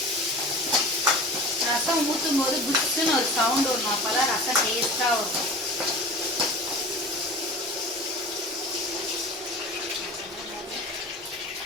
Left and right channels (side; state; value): both; normal; correlation 0.37